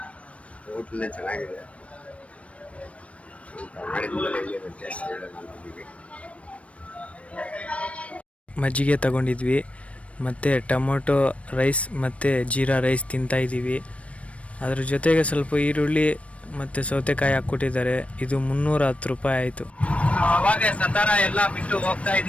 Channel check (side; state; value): right; late; 0.063 ms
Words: ಹೋಟ್ಲೇ ಚೆನ್ನಾಗಿದೆ, ಊಟ ಮಾಡಿದ್ಮೇಲೆ ಹೇಗಿದೆ ಟೇಸ್ಟ್ ಹೇಳೋಣ ನಮಗೆ. ಮಜ್ಜಿಗೆ ತಗೊಂಡಿದ್ವಿ, ಮತ್ತು ಟೊಮೊಟೊ ರೈಸ್ ಮತ್ತು ಜೀರಾ ರೈಸ್ ತಿಂತಾಯಿದ್ದೀವಿ. ಅದ್ರ ಜೊತೆಗೆ ಸ್ವಲ್ಪ ಈರುಳ್ಳಿ ಮತ್ತು ಸೌತೆಕಾಯಿ ಹಾಕ್ಕೊಟ್ಟಿದ್ದಾರೆ. ಇದು 310 ರೂಪಾಯಿ ಆಯಿತು. ಅವಾಗ ಸತಾರ ಎಲ್ಲ ಬಿಟ್ಟು ಹೋಗ್ತಾ